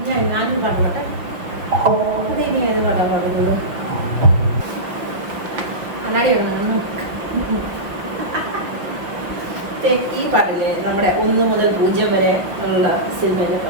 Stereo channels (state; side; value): late; left; 5.6 ms